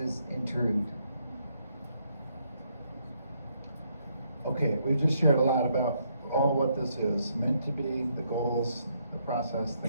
intrude. Okay, we've just shared a lot about all what this is meant to be, the goals, the process,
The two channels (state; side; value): inverted; both; correlation -0.74